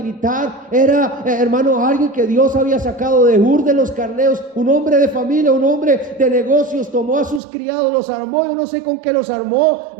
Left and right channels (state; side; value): drops out; left; at 7.4 s